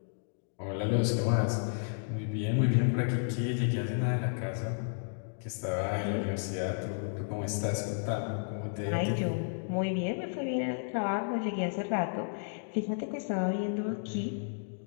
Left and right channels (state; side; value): silent; right; digital silence